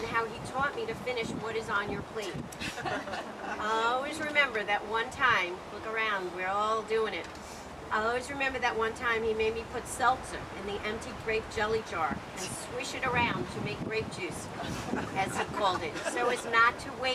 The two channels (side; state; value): both; identical; correlation 1.00